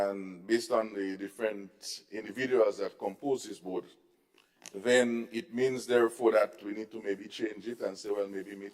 based on the different individuals that compose this board, then it means therefore that we need to maybe change it and say, well, maybe meet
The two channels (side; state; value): both; identical; correlation 1.00